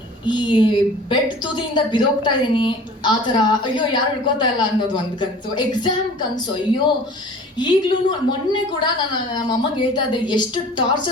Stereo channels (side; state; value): both; normal; correlation 0.45